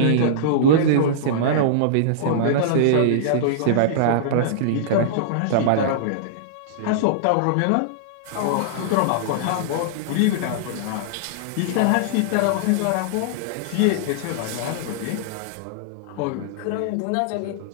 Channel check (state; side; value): different; both; correlation -0.02